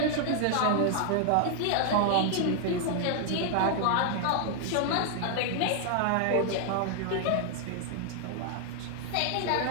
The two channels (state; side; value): different; both; correlation 0.00